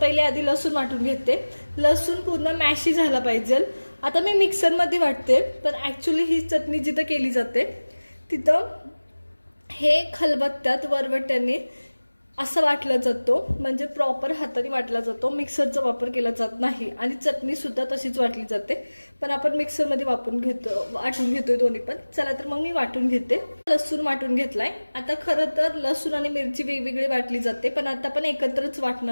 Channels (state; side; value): inverted; both; correlation -1.00